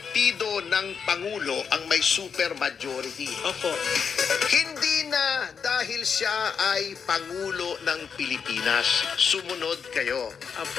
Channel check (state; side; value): quieter; right; 6.4 dB